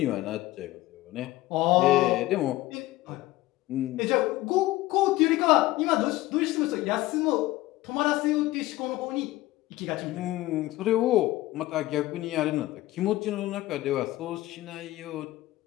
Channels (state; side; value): quieter; right; 17.2 dB